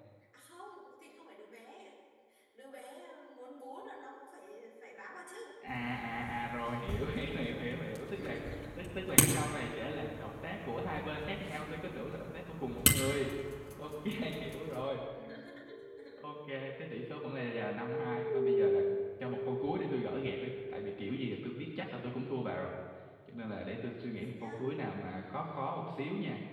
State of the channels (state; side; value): identical; both; correlation 1.00